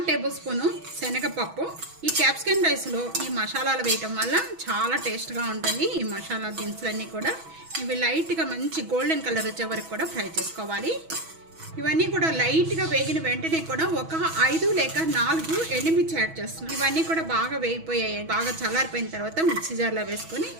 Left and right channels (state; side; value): late; left; 6.1 ms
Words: టేబుల్ స్పూను శనగపప్పు. ఈ క్యాప్సికమ్ రైస్లో ఈ మసాలాలు వేయటం వల్ల చాలా టేస్ట్గా ఉంటుంది. ఈ మసాలా దినుసులన్నీ కూడా ఇవి లైట్గా మంచి గోల్డెన్ కలర్ వచ్చే వరకు కూడా ఫ్రై చేసుకోవాలి. ఇవన్నీ కూడా లైట్గా వేగిన వెంటనే కూడా ఒక 5 లేక 4 ఎండుమిర్చి యాడ్ చేస్తున్నాను. ఇవన్నీ కూడా బాగా వేగిపోయాయి. బాగా చల్లారిపోయిన తర్వాత మిక్సీ జార్లో వేసుకొని